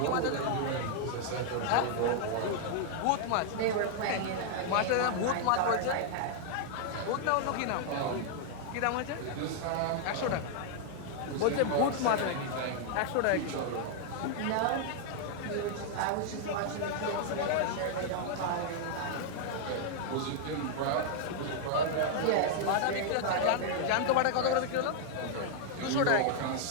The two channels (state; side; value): different; both; correlation -0.01